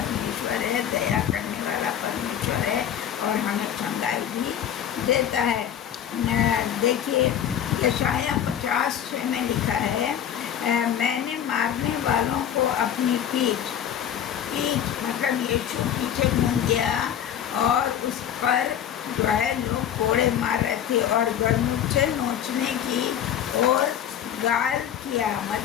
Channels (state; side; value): quieter; right; 9.7 dB